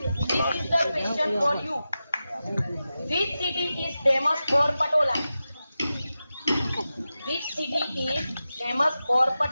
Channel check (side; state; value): both; inverted; correlation -0.93